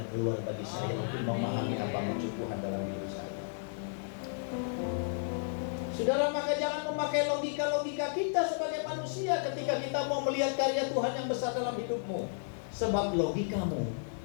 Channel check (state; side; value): silent; right; digital silence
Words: keluar bagi saya untuk memahami apa maksud Tuhan dalam hidup saya. Saudara, maka jangan memakai logika-logika kita sebagai manusia ketika kita mau melihat karya Tuhan yang besar dalam hidupmu. Sebab logikamu